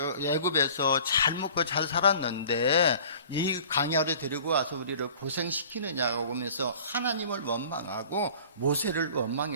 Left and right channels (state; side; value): inverted; both; correlation -0.47